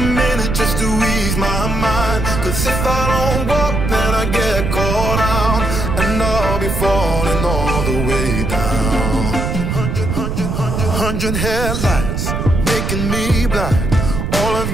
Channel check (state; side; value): noise; right; rumble, 2 dB below the sound